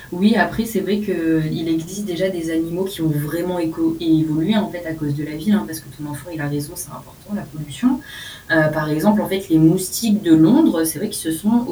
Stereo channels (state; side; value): identical; both; correlation 1.00